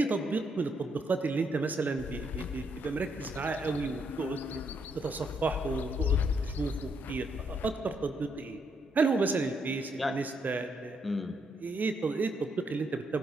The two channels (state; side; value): normal; both; correlation 0.75